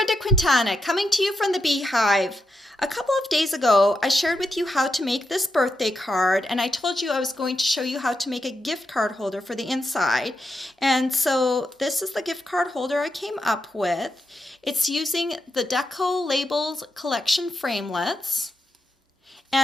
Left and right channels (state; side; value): normal; both; correlation 0.85